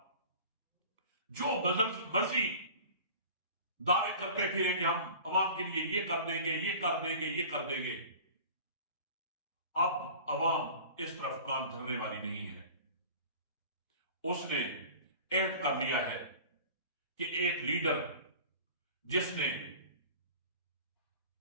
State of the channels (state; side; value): inverted; both; correlation -0.41